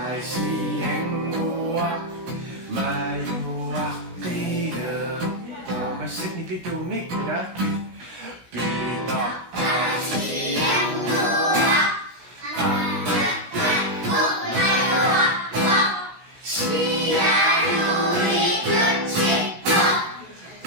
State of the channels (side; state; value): left; late; 16 ms